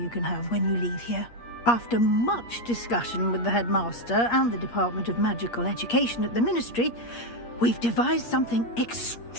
can have when you leave here. After much discussion with the headmaster and the Department of Magical Education at the Ministry, we've devised something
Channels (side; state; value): right; late; 8.5 ms